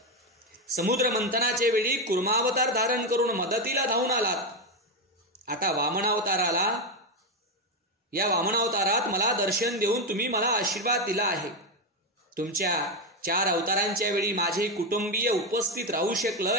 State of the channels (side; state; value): both; normal; correlation 0.09